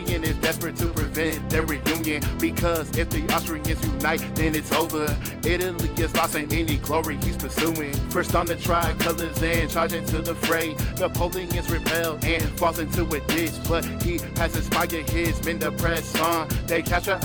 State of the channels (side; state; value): both; identical; correlation 1.00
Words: is desperate to prevent their reunion, because if the Austrians unite, then it's over. Italy is lost in any glory he's pursuing. First on the tricolors and charging to the fray. Napoleon's repelled and falls into a ditch, but he has inspired his men to press on. They capture